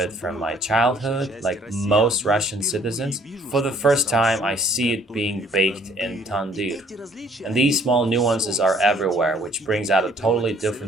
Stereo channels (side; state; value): both; normal; correlation 0.59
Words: from my childhood, like most Russian citizens. For the first time, I see it being baked in tandoor. And these small nuances are everywhere, which brings out a totally